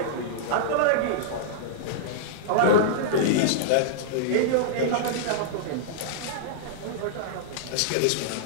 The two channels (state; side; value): different; both; correlation -0.02